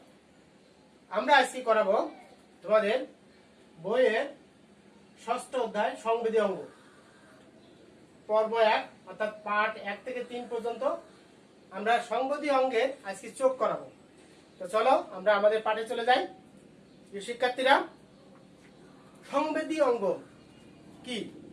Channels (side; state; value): both; identical; correlation 1.00